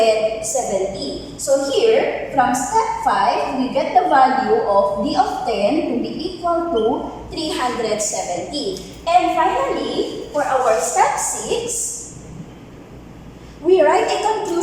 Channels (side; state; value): both; identical; correlation 1.00